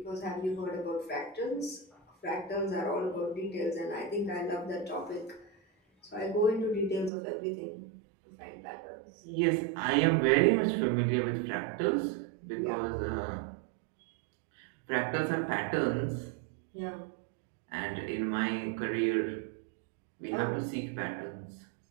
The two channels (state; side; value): drops out; left; at 7.1 s